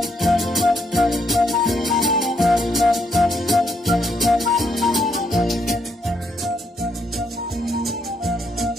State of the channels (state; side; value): normal; both; correlation 0.76